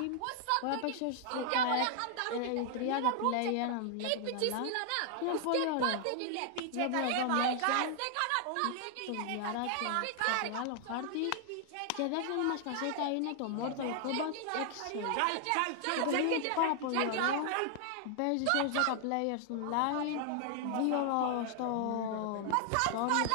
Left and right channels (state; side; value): different; both; correlation 0.00